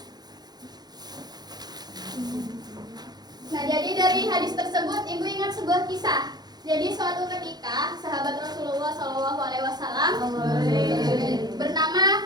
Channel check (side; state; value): left; late; 0.20 ms